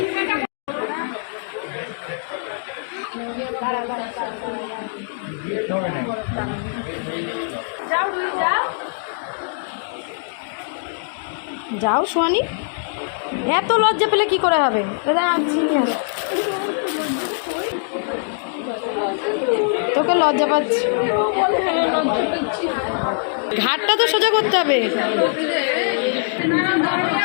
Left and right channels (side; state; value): right; silent; digital silence